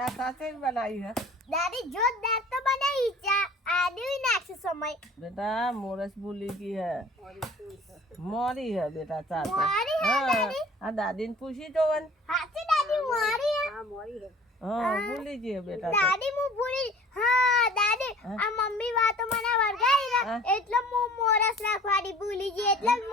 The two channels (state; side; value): normal; both; correlation 0.48